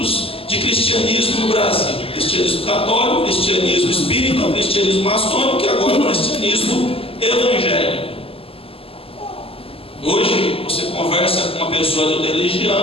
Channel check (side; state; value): right; late; 0.27 ms